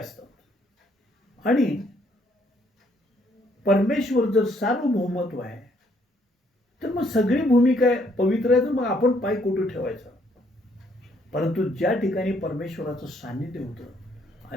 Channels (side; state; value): both; normal; correlation 0.68